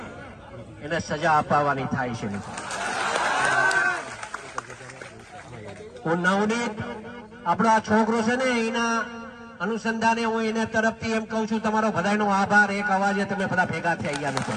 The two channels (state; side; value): identical; both; correlation 1.00